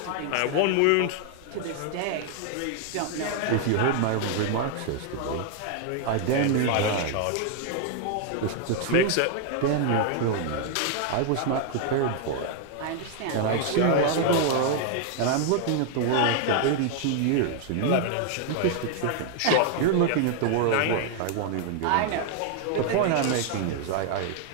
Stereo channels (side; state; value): both; different; correlation 0.00